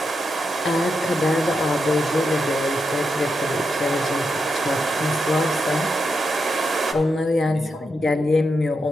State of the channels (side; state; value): both; normal; correlation 0.85